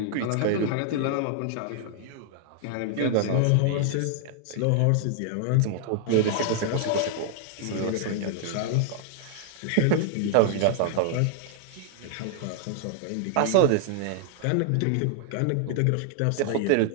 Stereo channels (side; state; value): both; different; correlation 0.00